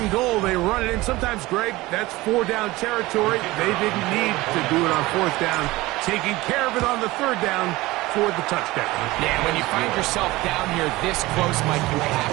goal, they run it in. Sometimes, Greg, that's 4-down territory. They didn't need to do it on 4th down. Taking care of it on the 3rd down for the touchdown. Yeah, when you find yourself down here this close, Mike, you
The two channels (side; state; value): left; quieter; 19.7 dB